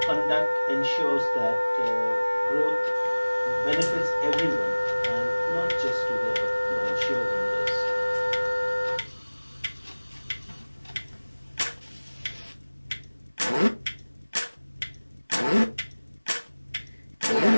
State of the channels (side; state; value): both; inverted; correlation -1.00